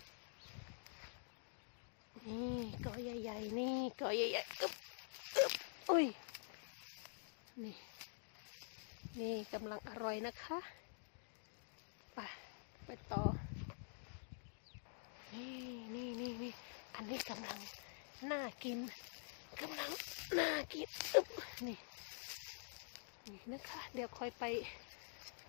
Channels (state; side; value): silent; right; digital silence